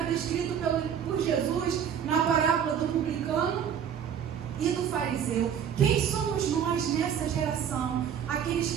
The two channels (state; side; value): quieter; left; 8.4 dB